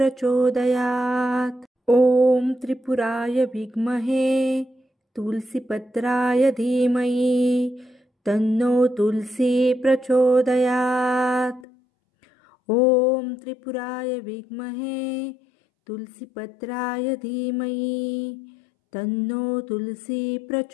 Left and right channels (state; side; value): drops out; right; at 11.7 s